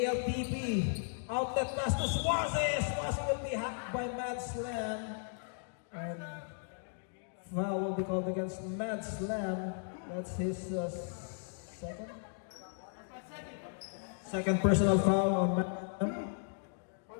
Outlet pass to Swaze. Swaze will be hacked by Mad Slam. And foul will be called against Mad Slam. That's his second personal foul on Mad Slam.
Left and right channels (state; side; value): silent; right; digital silence